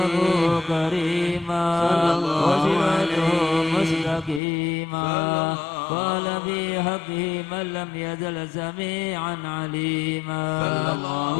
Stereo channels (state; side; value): drops out; right; at 4.4 s